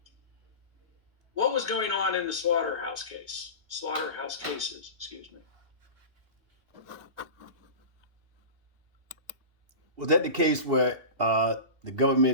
What was going on in the Slaughterhouse cases, excuse me? Was that the case where the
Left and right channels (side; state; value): left; late; 2.8 ms